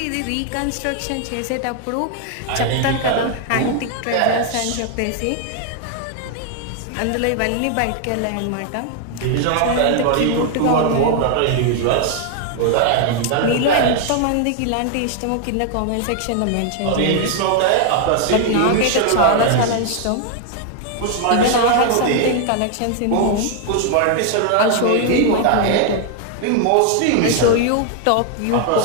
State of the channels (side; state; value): both; different; correlation 0.00